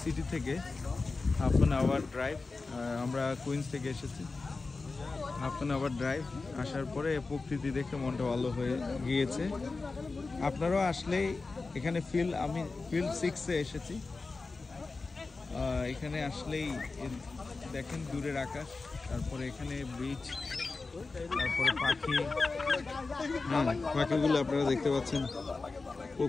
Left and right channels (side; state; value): right; quieter; 3.9 dB